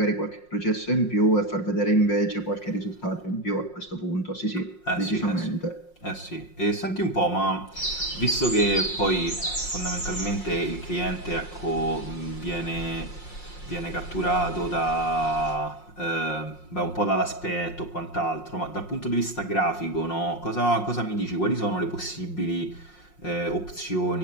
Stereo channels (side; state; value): right; late; 5.6 ms